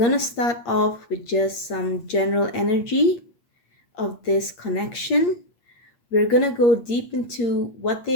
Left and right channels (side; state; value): right; late; 8.6 ms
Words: to start off with just some general energy of this connection. We're going to go deep into what